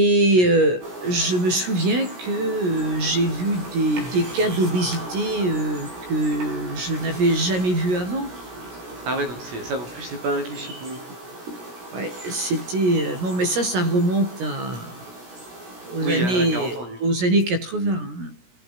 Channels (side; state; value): left; late; 17 ms